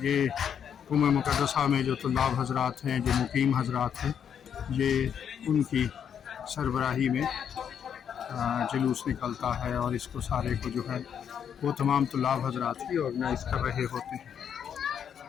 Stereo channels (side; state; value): right; quieter; 8.2 dB